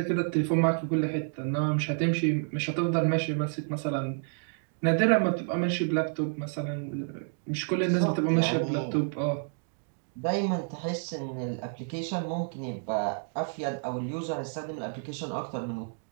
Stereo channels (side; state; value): left; silent; 58 dB below the other